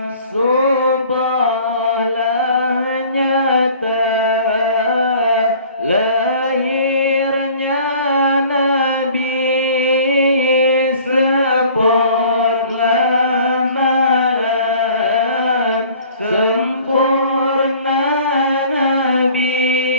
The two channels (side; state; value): both; inverted; correlation -0.50